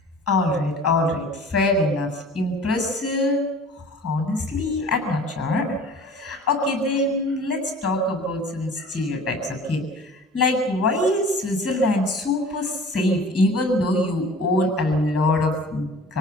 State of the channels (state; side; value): normal; both; correlation 0.44